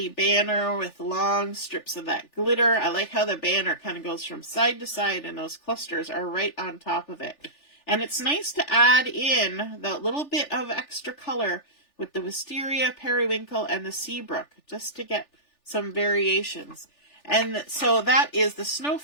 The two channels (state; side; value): late; right; 3.4 ms